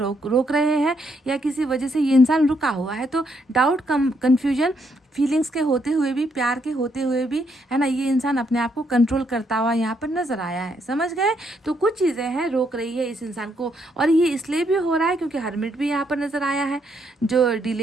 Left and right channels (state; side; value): normal; both; correlation 0.74